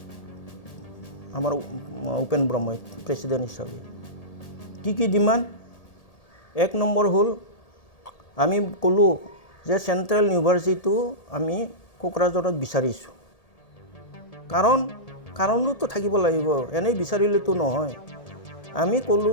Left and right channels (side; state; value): right; late; 1.8 ms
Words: আমাৰ উপেন ব্ৰহ্মই প্ৰেচিডেণ্ট হিচাপে। কি ডিমাণ্ড? 1 নম্বৰ হ'ল আমি ক'লোঁ যে চেণ্ট্ৰেল ইউনিভাৰ্চিটিটো আমি কোকৰাঝাৰত বিচাৰিছোঁ। কাৰণটো থাকিব লাগিব, এনেই বিচাৰিলেতো নহয়। আমি